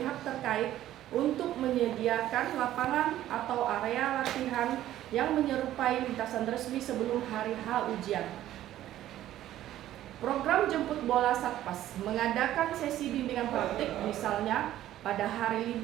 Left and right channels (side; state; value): left; quieter; 13.2 dB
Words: terkait untuk menyediakan lapangan atau area latihan yang menyerupai lintasan resmi sebelum hari H ujian. Program jemput bola Satpas mengadakan sesi bimbingan praktik, misalnya pada hari